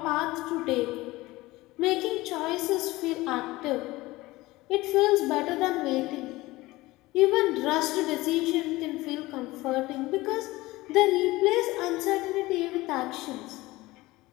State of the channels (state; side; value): quieter; right; 19.5 dB